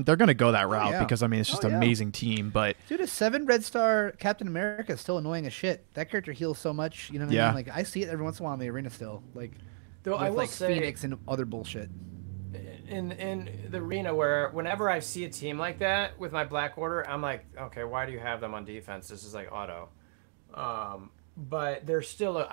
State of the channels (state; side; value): silent; left; 57 dB below the other